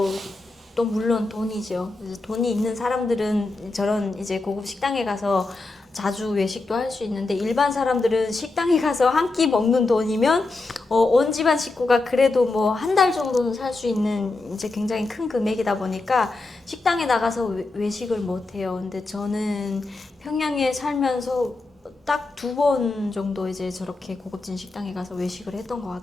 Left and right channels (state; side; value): quieter; right; 3.3 dB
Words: 또 물론 돈이죠. 돈이 있는 사람들은 저런 이제 고급 식당에 가서 자주 외식도 할 수 있는데 일반 사람들은 식당에 가서 한 끼 먹는 돈이면 온 집안 식구가 그래도 뭐 한 달 정도는 살 수 있는 이제 굉장히 큰 금액이다 보니까 식당에 나가서 외식을 못 해요. 근데 저는 평양에 살면서 딱 2번 정도 이제 저렇게 고급진 식당에 가서 외식을 했던 것